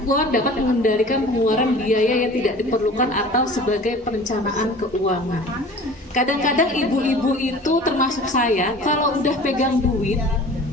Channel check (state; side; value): normal; both; correlation 0.43